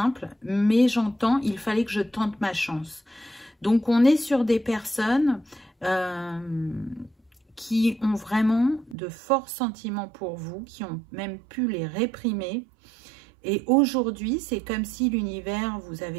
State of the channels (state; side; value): drops out; left; at 9.0 s